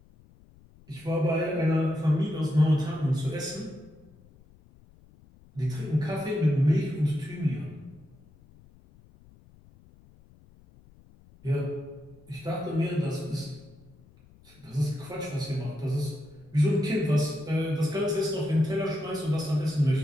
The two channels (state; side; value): noise; left; rumble, 26 dB below the sound